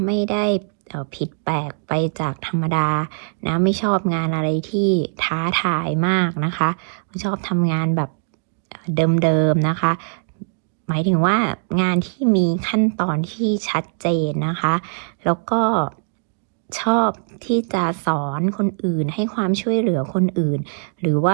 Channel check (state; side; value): silent; left; 65 dB below the other